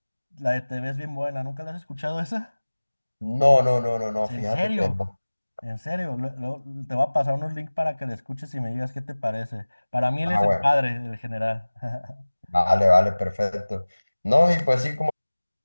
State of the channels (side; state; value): both; inverted; correlation -1.00